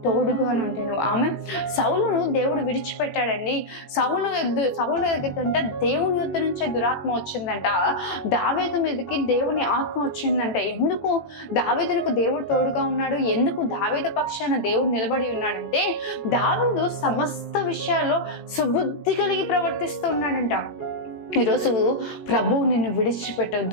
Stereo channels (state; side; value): late; right; 14 ms